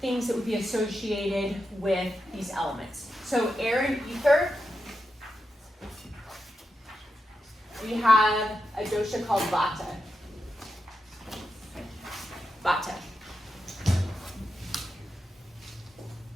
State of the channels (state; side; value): normal; both; correlation 0.88